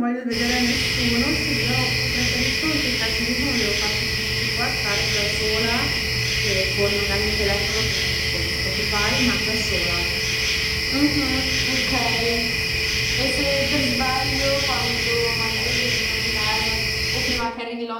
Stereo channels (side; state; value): both; identical; correlation 1.00